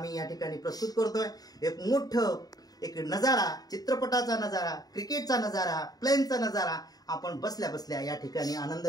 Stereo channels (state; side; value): late; right; 0.18 ms